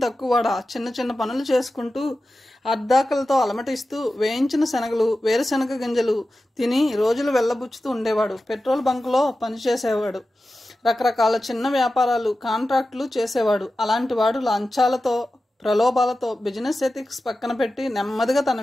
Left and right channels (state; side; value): normal; both; correlation 0.94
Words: తక్కువడా? చిన్న చిన్న పనులు చేసుకుంటూ అర్ధాకలతో అలమటిస్తూ వేయించిన శనగలు, వేరుశనగ గింజలు తిని రోజులు వెళ్ళబుచ్చుతూ ఉండేవాడు. పెట్రోల్ బంకులో పనిచేసేవాడు. రకరకాల చిన్న వ్యాపారాలు, కాంట్రాక్టులు చేసేవాడు. అలాంటి వాడు లంచాలతో ప్రలోభాలతో బిజినెస్ ఎథిక్స్ పక్కన పెట్టి నెమ్మదిగా తన